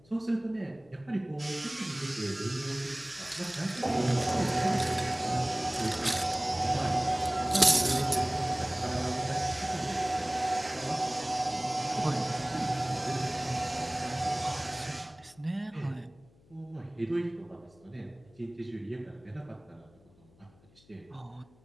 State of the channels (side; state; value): left; noise; hum, 28 dB below the sound